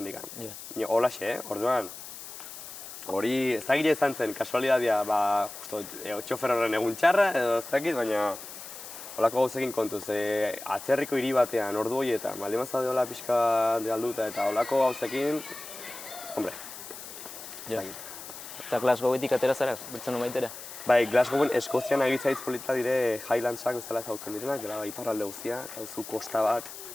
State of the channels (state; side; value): noise; left; hiss, 12 dB below the sound